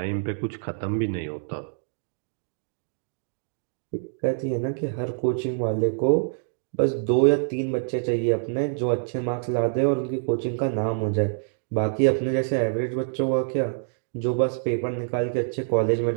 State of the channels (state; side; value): silent; left; digital silence